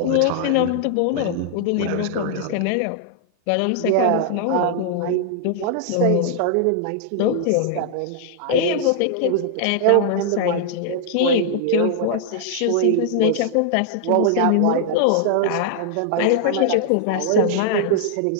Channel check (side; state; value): both; different; correlation -0.01